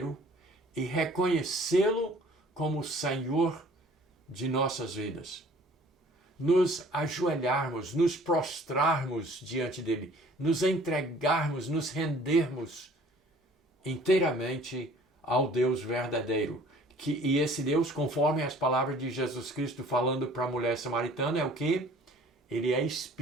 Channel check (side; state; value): both; normal; correlation 0.53